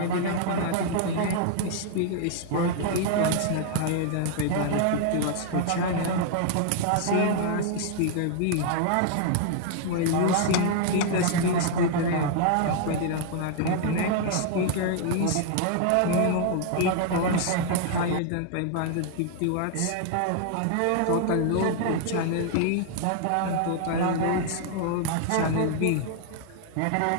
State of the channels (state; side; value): different; both; correlation -0.01